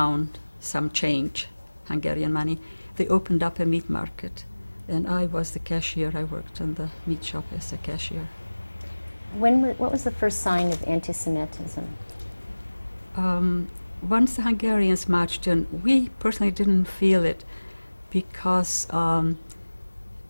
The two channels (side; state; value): both; inverted; correlation -1.00